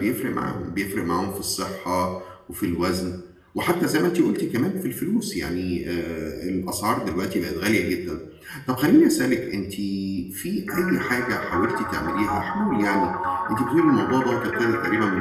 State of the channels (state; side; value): identical; both; correlation 1.00